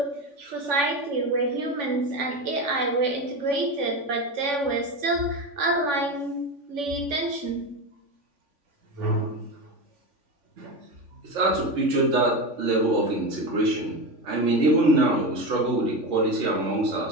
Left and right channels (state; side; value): late; left; 3.5 ms